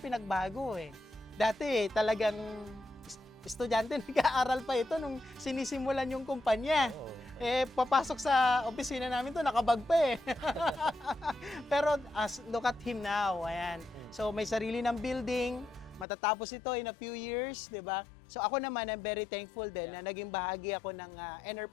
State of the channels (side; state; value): right; drops out; at 16.1 s